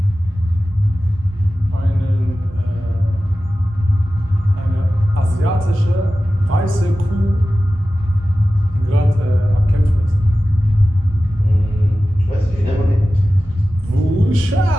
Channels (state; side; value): normal; both; correlation 0.95